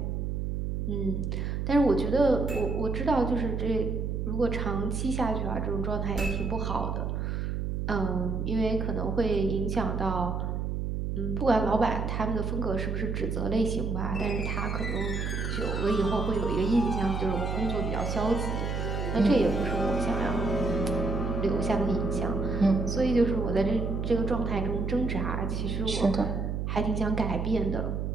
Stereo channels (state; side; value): noise; right; hum, 2 dB below the sound